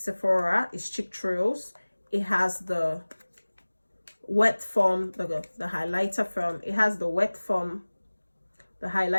It's Cheek Trails. It has the wet foam, the highlighter foam. It has the wet foam, the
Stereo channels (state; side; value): inverted; both; correlation -1.00